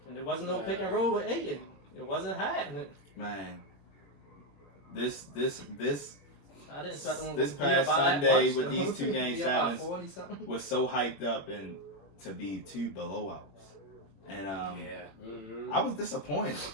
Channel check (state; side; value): late; right; 21 ms